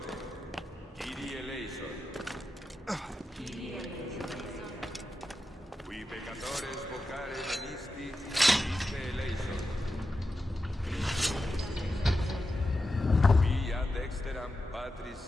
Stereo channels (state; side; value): normal; both; correlation 0.90